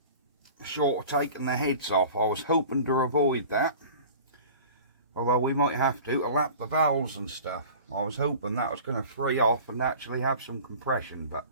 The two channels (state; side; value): inverted; both; correlation -0.41